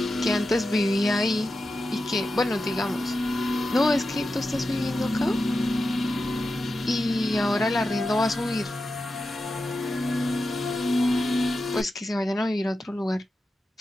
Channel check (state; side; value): normal; both; correlation 0.91